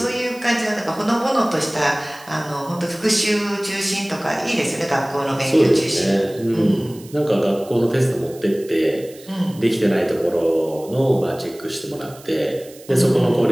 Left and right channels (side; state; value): right; noise; hiss, 22 dB below the sound